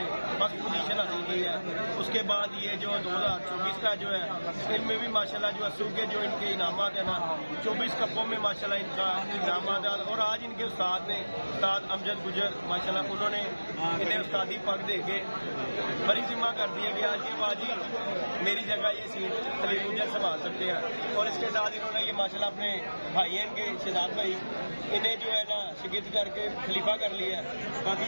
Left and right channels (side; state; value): both; inverted; correlation -1.00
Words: फर्स्ट पोजीशन हासिल की है। उसके बाद ये जो 2024 का जो है इनमें भी माशाल्लाह जो अस्सू के जो इनके इनामात है ना 24 कपों में माशाल्लाह इनका इनामात है। और आज इनके उस्ताद ने उस्ताद अमजद गुजर माशाल्लाह उन्होंने इन्हें उस्तादी पग दे के बड़ी जिम्मा कर दिया कि आज ये बाजी मेरी जगह ये सीट खलील गुजर संभाल सकते हैं। और इसके साथ इन्होंने ये माशाल्लाह अपने भाई हैं इनके शहजाद भाई, इन्हें जो है ना शिगिद करके खलीफा कर लिया है। बाकी